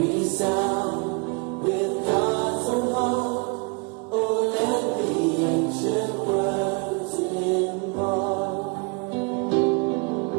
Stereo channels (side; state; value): left; quieter; 31.8 dB